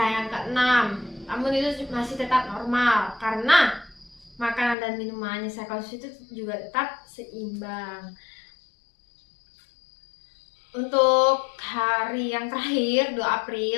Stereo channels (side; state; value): right; drops out; at 4.8 s